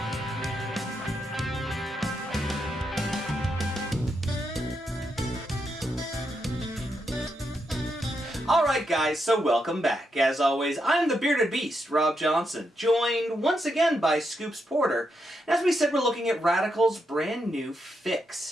Alright guys, so welcome back. As always, I'm the Bearded Beast, Rob Johnson, joined once again by Scoops Porter. And as we said, we're looking at Radical's brand new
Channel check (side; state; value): both; normal; correlation 0.82